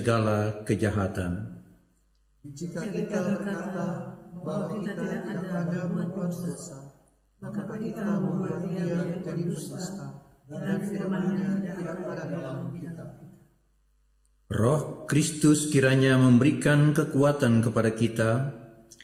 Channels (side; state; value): both; identical; correlation 1.00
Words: kejahatan. Jika kita berkata bahwa kita tidak ada berbuat dosa, maka kita membuat Dia menjadi dusta dan firman-Nya tidak ada dalam kita. Roh Kristus kiranya memberikan kekuatan kepada kita,